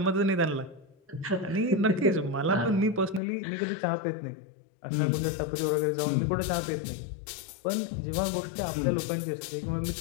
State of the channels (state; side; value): drops out; right; at 3.2 s